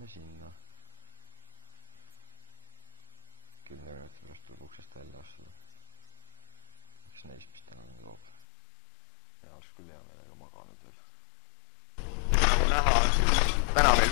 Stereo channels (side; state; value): right; drops out; at 8.3 s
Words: sinna. 10 minuti pärast tuleb uksest välja astuda. Üks neist, mis täna nüüd loob. Ja oleks küll hea meelega maganud veel. Täna meil